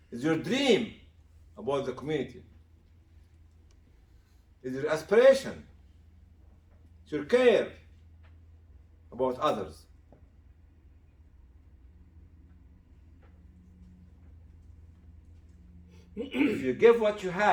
It's your dream about the community. It's your aspiration. It's your care about others. If you give what you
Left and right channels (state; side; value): identical; both; correlation 1.00